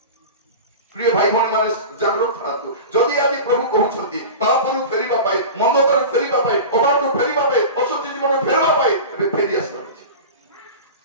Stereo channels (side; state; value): both; inverted; correlation -0.31